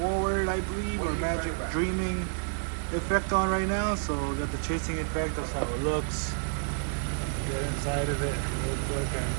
I believe, or magic dreaming effect on right now. So we got the chasing effect. That's how it looks. Get inside of it real quick and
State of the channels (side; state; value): left; silent; 58 dB below the other